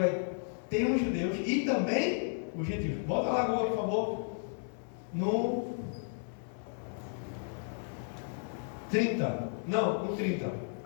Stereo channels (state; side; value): silent; right; digital silence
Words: ter os judeus e também o gentil. Volta lá agora, por favor. No 30. Não, no 30.